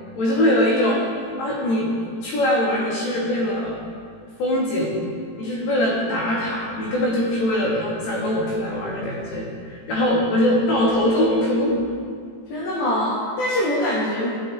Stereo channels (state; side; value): late; right; 18 ms